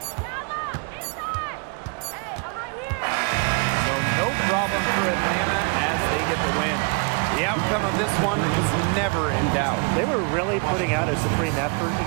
So no problem for Atlanta as they get the win. The outcome of this one was never in doubt. They were really putting out a supreme effort, and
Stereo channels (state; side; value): quieter; left; 34.3 dB